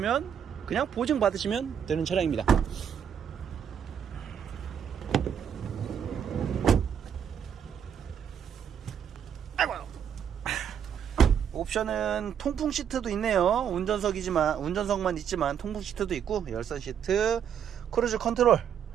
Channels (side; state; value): left; quieter; 8.4 dB